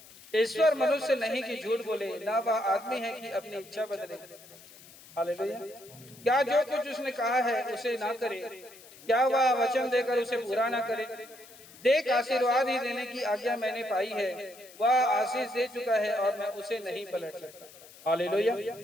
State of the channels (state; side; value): noise; left; hiss, 21 dB below the sound